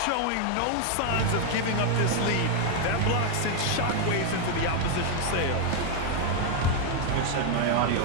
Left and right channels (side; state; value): both; different; correlation 0.01